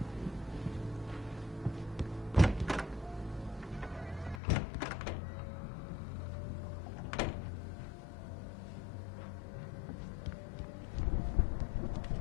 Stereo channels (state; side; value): drops out; right; at 4.4 s